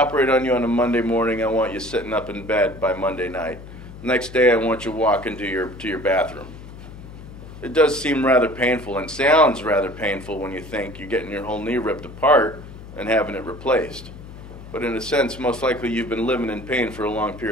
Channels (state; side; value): noise; left; hum, 15 dB below the sound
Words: on you on a Monday morning, I want you sitting up in bed by Monday night. The next day, I want you walking to your bathroom. It does seem rather painful and sounds rather painful when you think you're getting your whole knee ripped apart and having it replaced. But in a sense, most likely you've been living in pain for a long